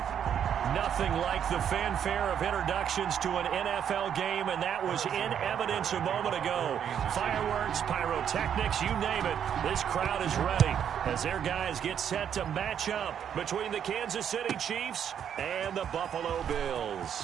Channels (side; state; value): left; quieter; 8.8 dB